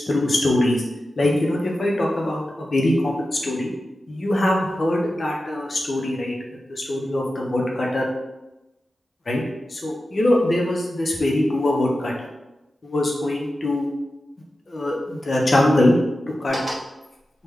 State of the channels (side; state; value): both; normal; correlation 0.92